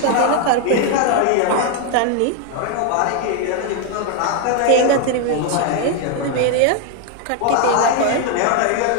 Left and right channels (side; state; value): both; different; correlation 0.01